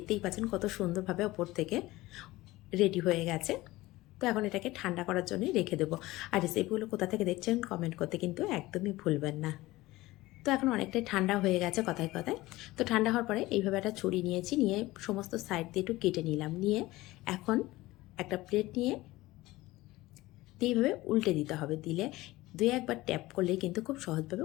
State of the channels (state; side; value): quieter; right; 18.8 dB